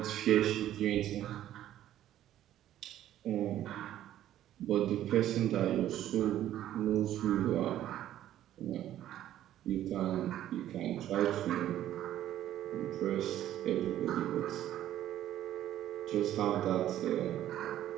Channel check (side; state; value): left; quieter; 12.4 dB